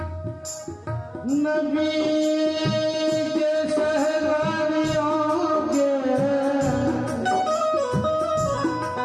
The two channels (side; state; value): both; identical; correlation 1.00